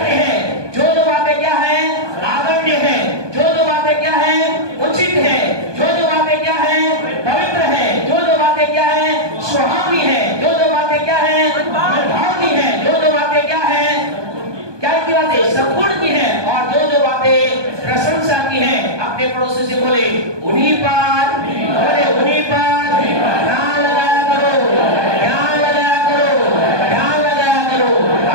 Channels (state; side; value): late; left; 1.2 ms